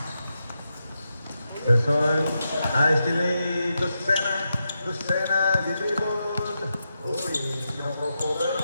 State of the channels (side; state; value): both; inverted; correlation -0.87